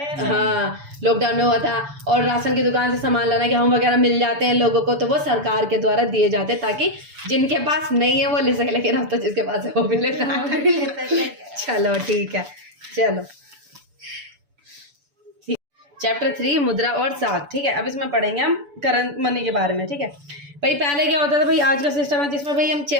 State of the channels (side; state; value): left; late; 6.9 ms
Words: हाँ लॉकडाउन में हुआ था, और राशन की दुकान से सामान लाना, गेहूँ वगैरह मिल जाते हैं लोगों को, तो वो सरकार के द्वारा दिए जाते हैं ताकि जिनके पास नहीं है वो ले सके, लेकिन अब तो जिसके पास है वो भी लेता है। चलो ठीक है, चलो चैप्टर 3 मुद्रा और साख। ठीक है, अब इसमें पढ़ेंगे हम करंट मनी के बारे में। ठीक है भाई, पहले क्या होता था भाई, आज का सिस्टम है जिसमें भाई हम